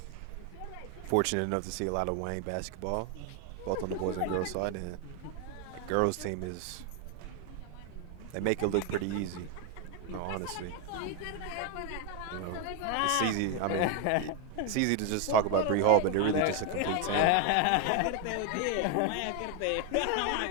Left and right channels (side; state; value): both; different; correlation 0.01